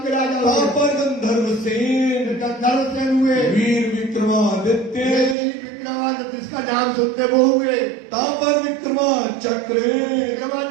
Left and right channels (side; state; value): left; drops out; at 5.4 s